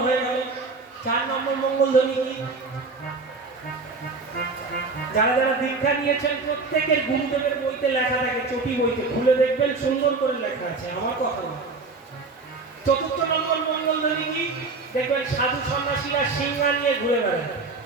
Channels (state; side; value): quieter; left; 4.0 dB